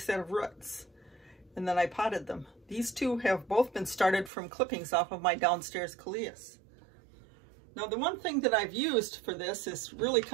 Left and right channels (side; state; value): left; drops out; at 4.3 s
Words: of roots, and then I potted them. These 2 have both been started from clippings off of my downstairs coleus. Now the one thing that I've used for this is really